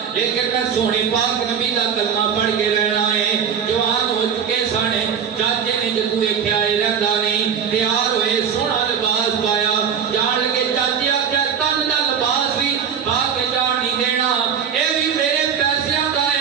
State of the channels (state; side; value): quieter; left; 7.5 dB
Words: لیکن میں سونے پاک نبی دا کلمہ پڑھ کے رہنا ہے جوان ہو چکے سانے چاچے نے جدو ویکھیا اے رہندا نہیں تیار ہوئے سونا لباس پایا جان لگے چاچی آکھیا تن دا لباس بھی پا کے جان نہیں دینا اے بھی میرے پیسیاں دا